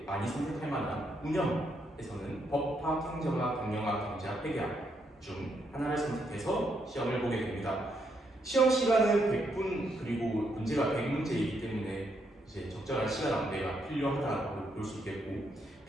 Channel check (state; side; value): normal; both; correlation 0.77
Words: 많이 선택할 만한 운영에서는 법학, 행정학, 경영학, 경제학, 회계학 중 하나를 선택해서 시험을 보게 됩니다. 시험 시간은 100분, 그리고 문제가 100문제이기 때문에 이제 적절한 시간 안배가 필요하다고 볼 수 있겠고,